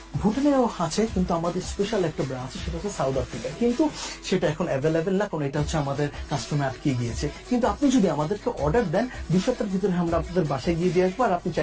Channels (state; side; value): identical; both; correlation 1.00